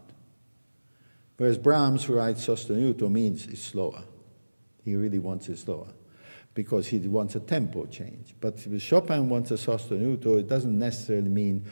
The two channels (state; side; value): inverted; both; correlation -1.00